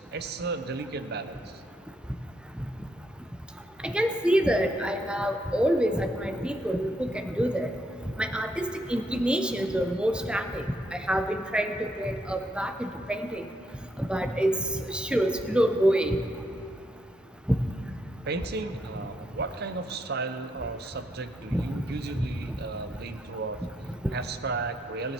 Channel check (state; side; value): normal; both; correlation 0.77